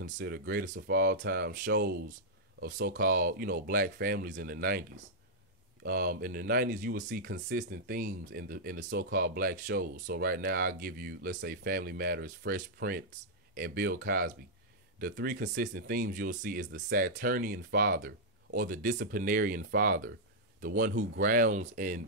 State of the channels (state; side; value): normal; both; correlation -0.07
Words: greatest of all time shows of so-called, black families in the 90s. In the 90s, you will see consistent themes in the so-called black shows. So right now, I'll give you, let's say, Family Matters, Fresh Prince, and Bill Cosby. The three consistent themes you'll see is the Saturnian father or the disciplinarian father, the one who grounds and